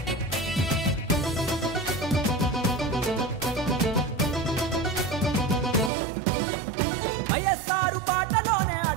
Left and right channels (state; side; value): drops out; left; at 5.9 s